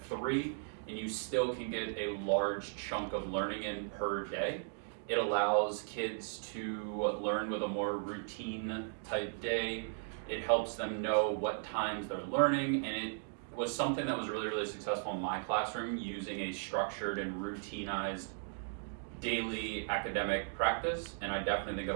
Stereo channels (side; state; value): left; silent; digital silence